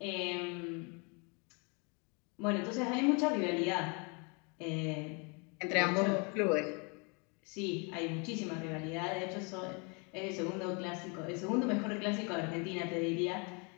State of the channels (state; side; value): quieter; right; 33.0 dB